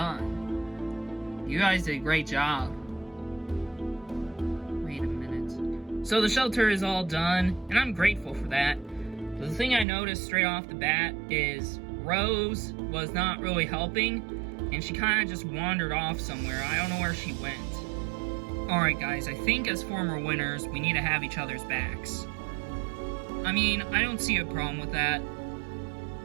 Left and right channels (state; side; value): drops out; left; at 9.9 s